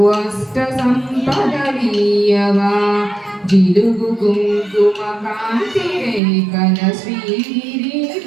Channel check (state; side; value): drops out; left; at 6.2 s